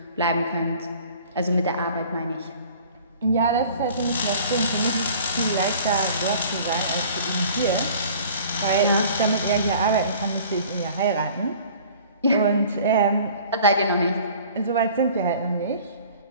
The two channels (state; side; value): inverted; both; correlation -0.48